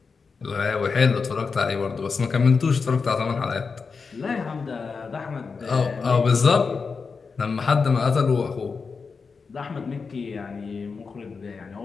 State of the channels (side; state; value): right; quieter; 5.0 dB